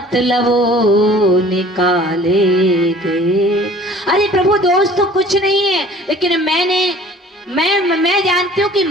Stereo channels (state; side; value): normal; both; correlation 0.49